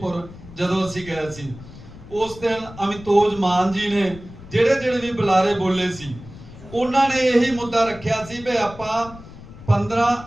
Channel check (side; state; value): left; noise; rumble, 17 dB below the sound